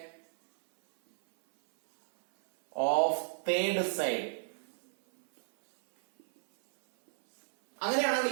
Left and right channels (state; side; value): silent; left; 57 dB below the other